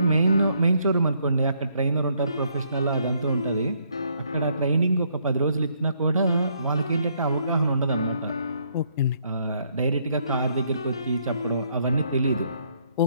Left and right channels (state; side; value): inverted; both; correlation -0.70